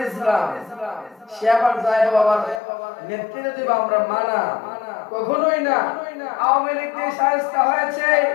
ইসলাম সে আবার যায় বাবার নেতৃত্ব দিব আমরা, মানা কখনোই না। আওয়ামী লীগ দিয়ে শায়েস্তা হয়েছে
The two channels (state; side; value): drops out; right; at 2.6 s